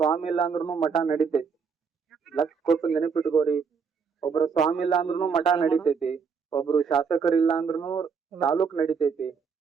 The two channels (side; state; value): left; quieter; 5.8 dB